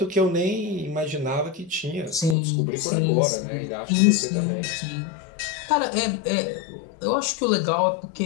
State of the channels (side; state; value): right; drops out; at 2.4 s